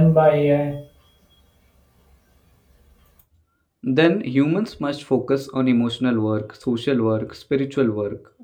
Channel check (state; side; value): identical; both; correlation 1.00